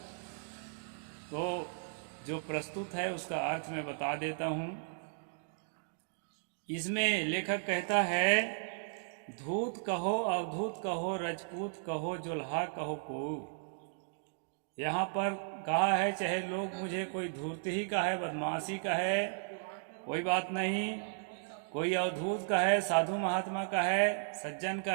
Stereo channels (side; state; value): left; silent; digital silence